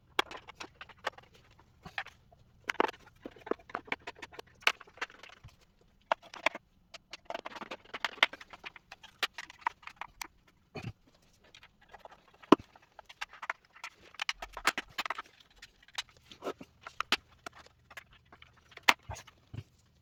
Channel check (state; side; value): identical; both; correlation 1.00